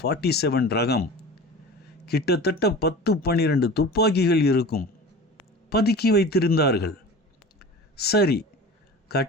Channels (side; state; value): both; normal; correlation 0.36